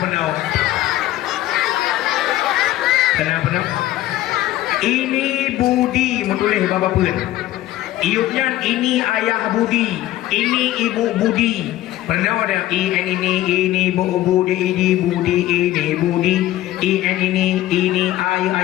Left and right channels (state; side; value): quieter; right; 14.6 dB